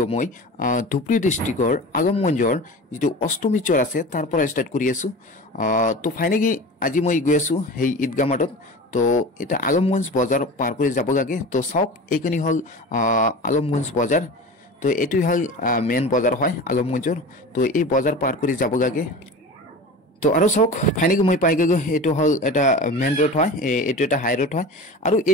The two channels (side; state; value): both; normal; correlation 0.33